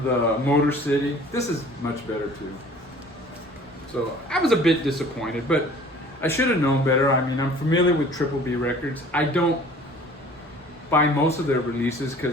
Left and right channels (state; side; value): normal; both; correlation 0.49